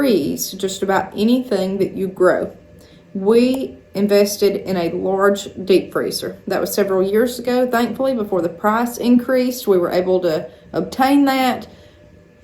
just about anything that you grow. We invested in a large deep freezer. That was several years ago. Thankfully, before the price increased, we were able to obtain that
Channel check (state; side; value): identical; both; correlation 1.00